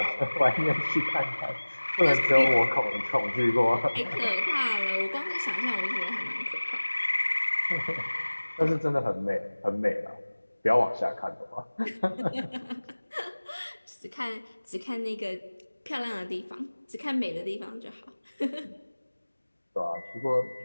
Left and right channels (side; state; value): both; inverted; correlation -1.00